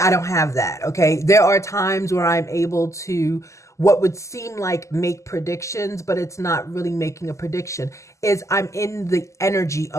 don't have that. Okay, there are times where I'm able to what would seem like make predictions, but it's not really making a prediction. Is I'm in the energy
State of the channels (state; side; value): late; right; 0.15 ms